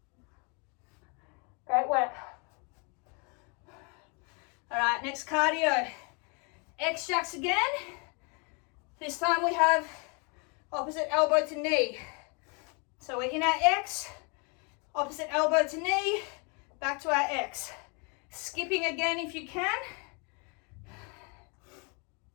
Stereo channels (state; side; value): quieter; right; 34.0 dB